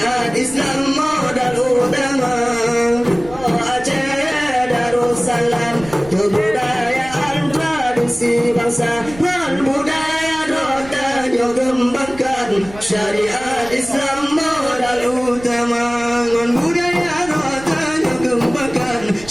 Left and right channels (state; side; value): noise; right; rumble, 17 dB below the sound